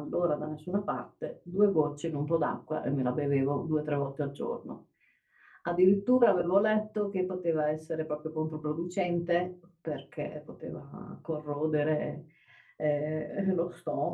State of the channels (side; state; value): both; identical; correlation 1.00